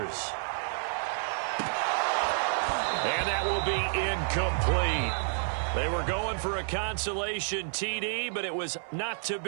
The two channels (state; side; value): silent; left; 58 dB below the other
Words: And that will be incomplete. They were going for a consolation TD, but it was not to